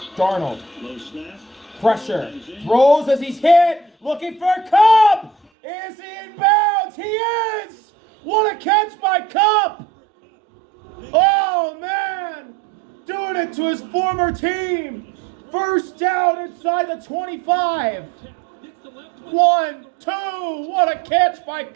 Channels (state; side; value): drops out; left; at 5.4 s